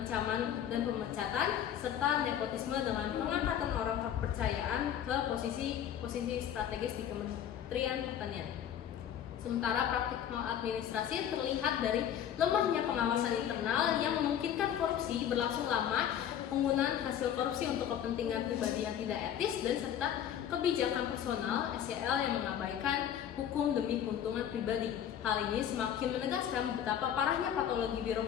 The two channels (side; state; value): right; quieter; 9.8 dB